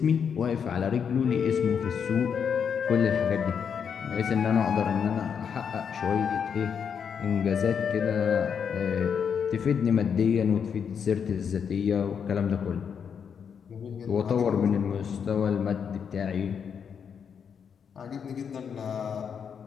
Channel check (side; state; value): right; quieter; 7.1 dB